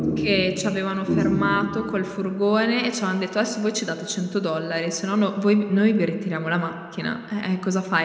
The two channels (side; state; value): both; identical; correlation 1.00